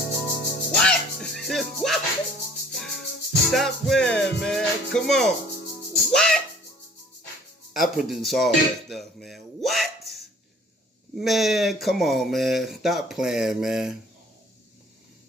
What? Stop playing, man. Come on. What? I produce all that stuff, man. What? Man, come on, man. Stop playing, man.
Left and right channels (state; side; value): normal; both; correlation 0.54